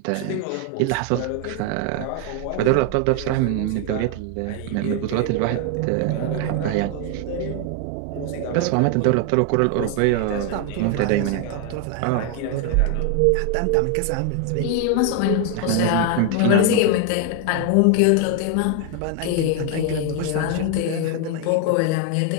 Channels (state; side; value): different; both; correlation 0.01